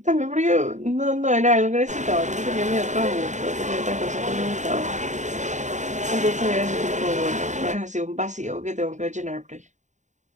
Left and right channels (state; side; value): late; left; 0.35 ms